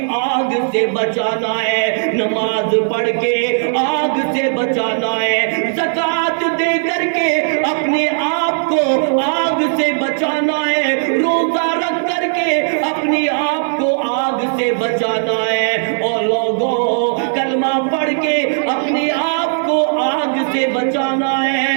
آگ سے بچانا ہے، نماز پڑھ کے آگ سے بچانا ہے، زکوٰۃ دے کر کے اپنے آپ کو آگ سے بچانا ہے، روزہ رکھ کر کے اپنے آپ کو آگ سے بچانا ہے، اور لوگوں کلمہ پڑھ کے اپنے آپ کو آگ سے بچانا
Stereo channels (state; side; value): silent; left; 68 dB below the other